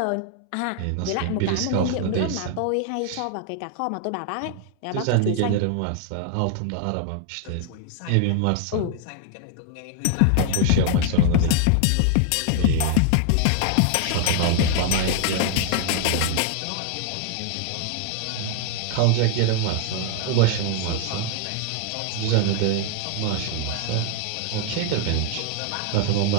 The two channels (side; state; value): both; different; correlation 0.00